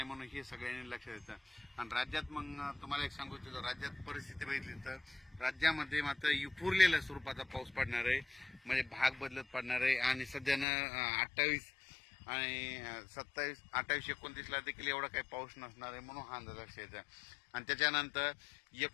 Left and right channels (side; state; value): right; drops out; at 10.7 s